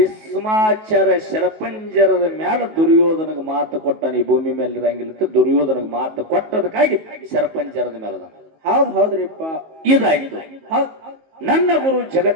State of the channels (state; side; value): late; left; 19 ms